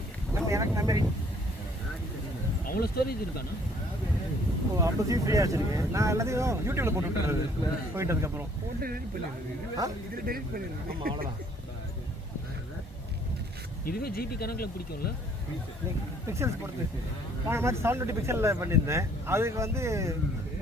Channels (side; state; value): both; normal; correlation 0.60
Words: எனக்கு மெமரி அவ்வளோ ஸ்டோரேஜ் இருக்காண்ணா? ஓ 50 ஃப்ரீயாக வச்சிருக்கேன். நான் எல்லாத்தையும் யூடியூப்ல போட்டு விட்டுறது போயிட்டதுக்கப்புறம். ஆமாம் அவ்வளோதான். இதுவே ஜிபி கணக்கில் பிடிக்கும்ல? பிக்சல்ஸ் பொறுத்து போன மாதிரி 720 பிக்சலில் பண்ணியிருந்தேன். அதுக்கு வந்து